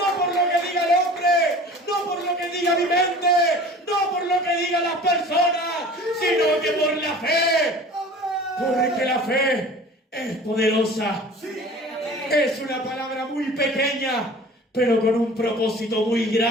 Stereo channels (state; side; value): normal; both; correlation 0.43